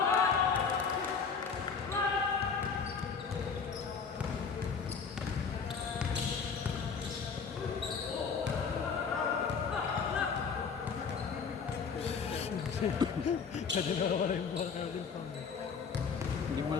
Kasi nawawala yung buwan ka rin pa. Hindi mo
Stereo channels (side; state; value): right; quieter; 5.8 dB